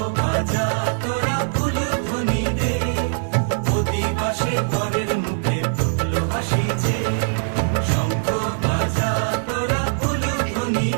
বাজা তোরা উলুধ্বনি দে, অধিবাসে বরের মুখে ফুটলো হাসি যে। শঙ্খ বাজা তোরা উলুধ্বনি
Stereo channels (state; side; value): silent; left; digital silence